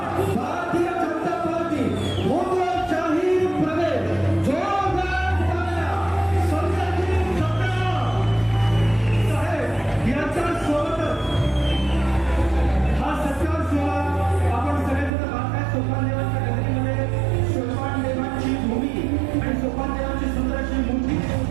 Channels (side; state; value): left; drops out; at 15.1 s